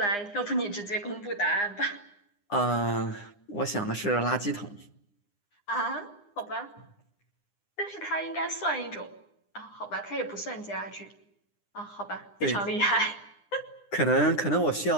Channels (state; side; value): late; right; 9.8 ms